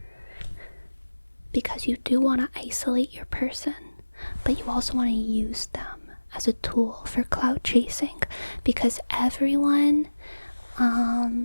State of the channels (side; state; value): both; inverted; correlation -1.00